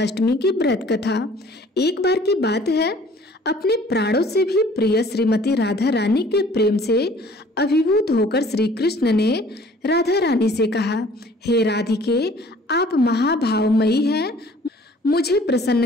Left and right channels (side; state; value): both; normal; correlation 0.53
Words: अष्टमी की व्रत कथा। एक बार की बात है, अपने प्राणों से भी प्रिय श्रीमती राधा रानी के प्रेम से अभिभूत होकर श्री कृष्ण ने राधा रानी से कहा, हे राधिके, आप महाभावमयी हैं। मुझे